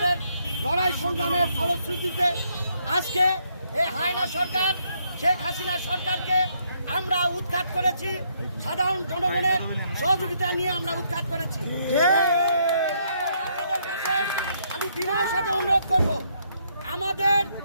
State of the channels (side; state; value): both; inverted; correlation -0.73